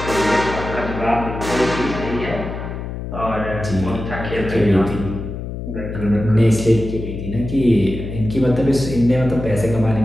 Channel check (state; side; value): noise; left; hum, 7 dB below the sound